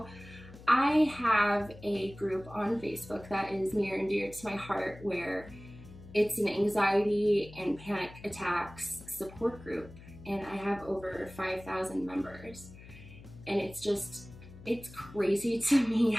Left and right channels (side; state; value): left; noise; hum, 18 dB below the sound